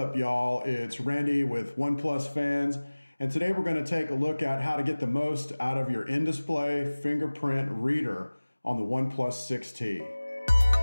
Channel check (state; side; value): inverted; both; correlation -1.00